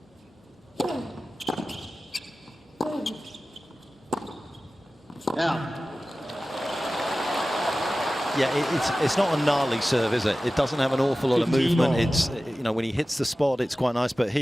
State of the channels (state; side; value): normal; both; correlation 0.96